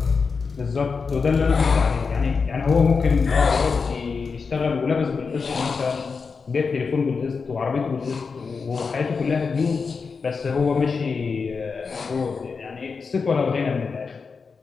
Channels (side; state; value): right; quieter; 5.1 dB